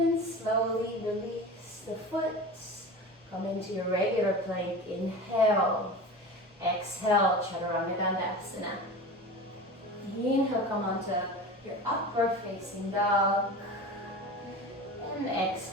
slowly release the foot. Come into your regular plank. Inhale. Exhale, Chaturanga Dandasana. Inhale, come onto your upward facing dog. And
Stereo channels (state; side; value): normal; both; correlation 0.32